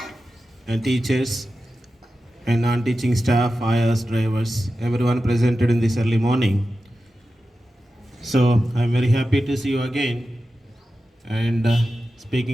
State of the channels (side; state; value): both; normal; correlation 0.92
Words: and teachers and non-teaching staff, ayahs, drivers, everyone presented in this early morning. So I'm very happy to see you again, and